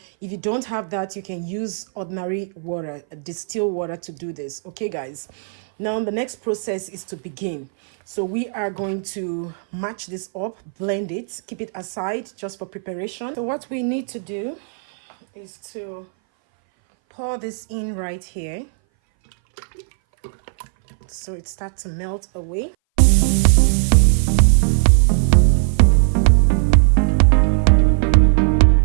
if you don't have that, you can use ordinary water, distilled water, to do this. Okay guys, now the next process is to begin. So we are going to match this up, blend it, keep it aside just for preparation. So what we need to do is to pour this in right here so it starts to melt away.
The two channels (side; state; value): left; silent; 61 dB below the other